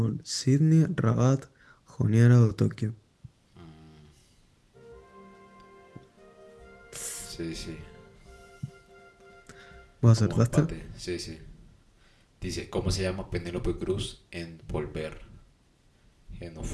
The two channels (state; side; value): identical; both; correlation 1.00